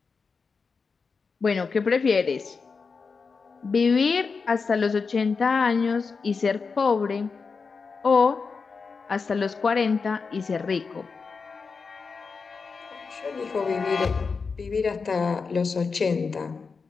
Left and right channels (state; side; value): quieter; right; 4.9 dB